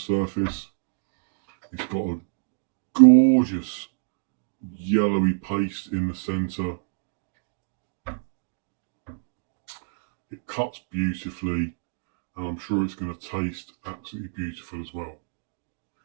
It's got a gorgeous yellowy paste in the centre. It cuts beautifully, and I'm sure it's going to taste absolutely beautiful as well.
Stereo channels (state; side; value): silent; left; digital silence